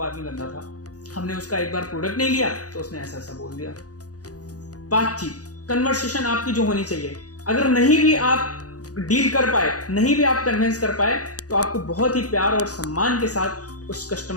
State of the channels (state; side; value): late; right; 0.67 ms